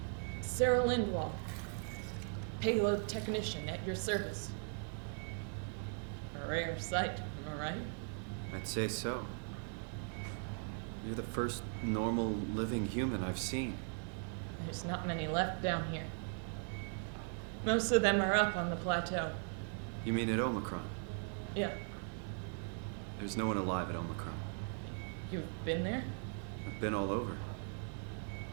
Sarah Lindwall, payload technician at your service. A rare sight, am I right? I'd say so. You're the first normal living human I've seen. There's not many left down here. Most of them are up on the plateau. You mean at Omicron? Yeah. There's no one alive at Omicron. You've been there? I've been all over.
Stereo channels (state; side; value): silent; left; 52 dB below the other